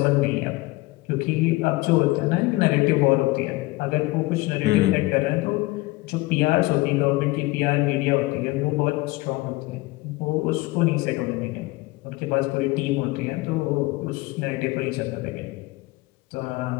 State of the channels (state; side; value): quieter; right; 21.3 dB